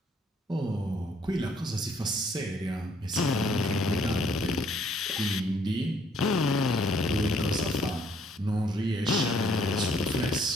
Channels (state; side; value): normal; both; correlation 0.64